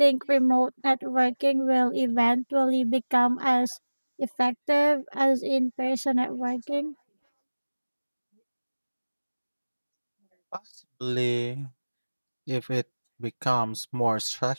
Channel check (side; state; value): both; inverted; correlation -1.00